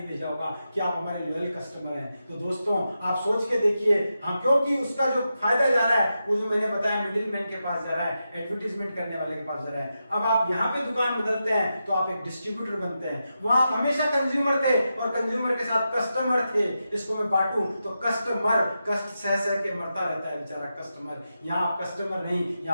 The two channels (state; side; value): inverted; both; correlation -0.88